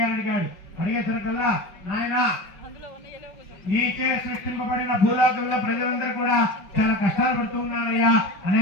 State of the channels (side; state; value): right; late; 5.5 ms